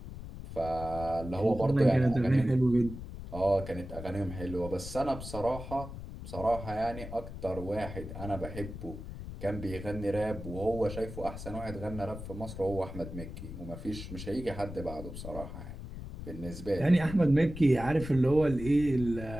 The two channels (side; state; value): left; noise; rumble, 10 dB below the sound